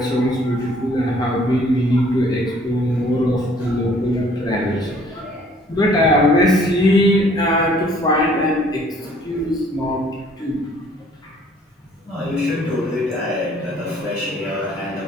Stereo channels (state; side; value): normal; both; correlation 0.58